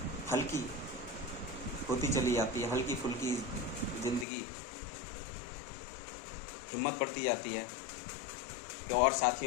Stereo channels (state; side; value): drops out; right; at 4.2 s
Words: हल्की होती चली जाती है, हल्की फुल्की ज़िंदगी। हिम्मत बढ़ती जाती है कि और